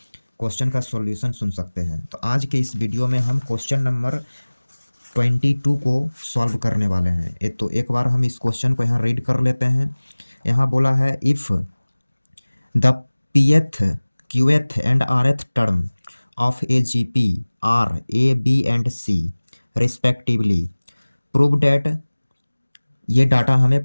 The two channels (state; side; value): inverted; both; correlation -1.00